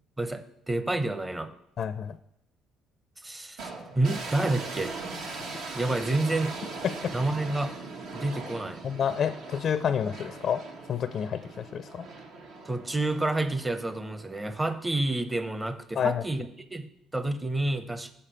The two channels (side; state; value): both; normal; correlation 0.83